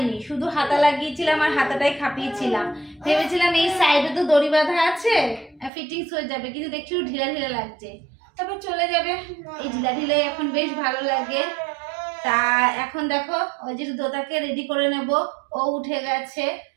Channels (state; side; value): drops out; left; at 5.7 s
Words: শুধু হাতা লাগিয়েছিলাম আর হাতাটাই খাপিয়েছিলাম। ভেবেছিলাম এই সাইডে তো দড়ি বাঁধা আছে, ফিটিংস হয়ে যাবে, কিন্তু দেখছি ঢিলা ঢিলা লাগছে। তারপর চলে যাবে, এই ঢিলা ঢিলে এখন বেশ ভালো লাগে। তা এখন দেখো ওই যে দোতাকে রেডি করে নেব। ও উঠে গেছে,